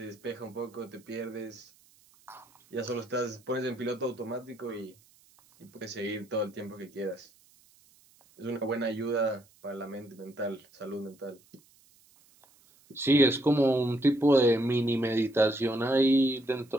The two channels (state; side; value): noise; right; hiss, 30 dB below the sound